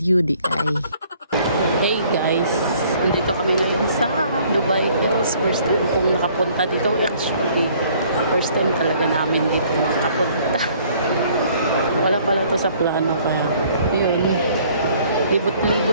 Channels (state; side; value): inverted; both; correlation -0.59